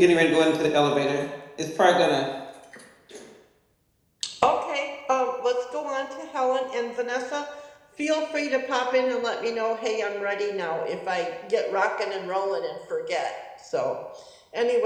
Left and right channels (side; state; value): both; identical; correlation 1.00